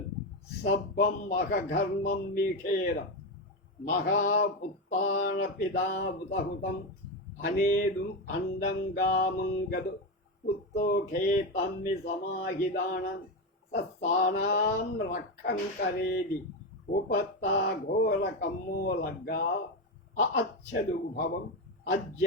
సబ్బం మఖఘర్మం మీఖేర మహాపుత్తాన పిదాబుతహుతం అనేదుం అండంగామంగదు పుత్తోఖే తమ్మి సమాహిదానం సత్సానాం రక్కం కరేది ఉపత్తా ఘోర కమ్మోలగ్గా అచ్చదు భవం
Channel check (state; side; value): normal; both; correlation 0.13